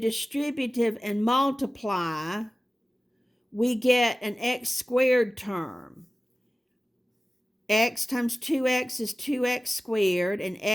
and multiply, we get an x squared term. X times 2x is 2x squared, and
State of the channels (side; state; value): both; normal; correlation 0.96